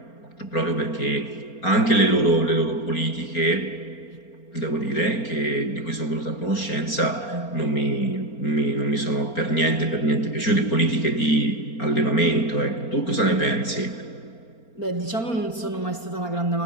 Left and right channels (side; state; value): right; late; 4.4 ms